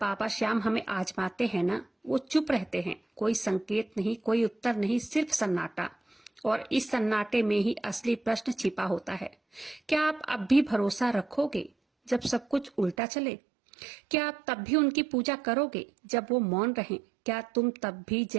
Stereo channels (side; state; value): left; drops out; at 13.0 s